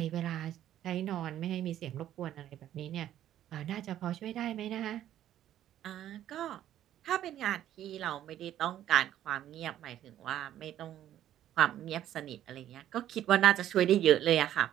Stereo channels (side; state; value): left; quieter; 11.8 dB